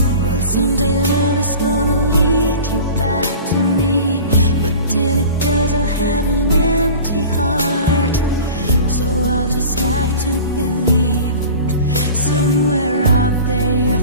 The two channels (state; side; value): inverted; both; correlation -0.38